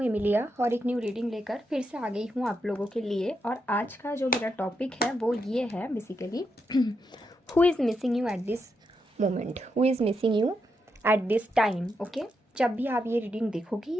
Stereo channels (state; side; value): normal; both; correlation 0.83